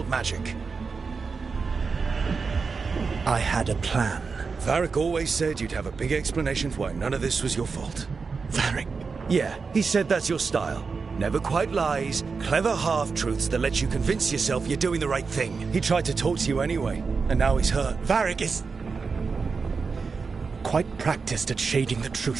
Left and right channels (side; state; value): left; quieter; 4.9 dB